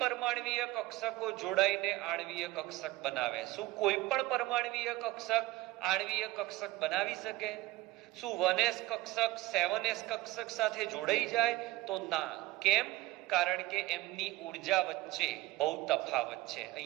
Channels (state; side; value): quieter; left; 18.5 dB